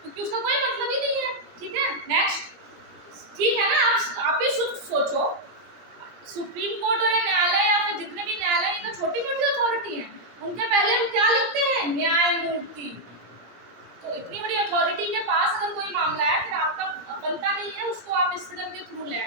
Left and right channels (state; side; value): late; left; 17 ms